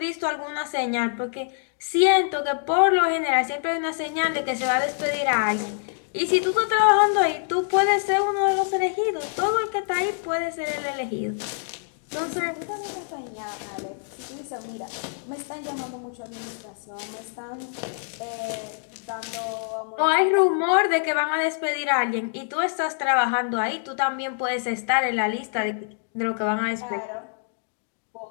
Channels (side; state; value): right; silent; digital silence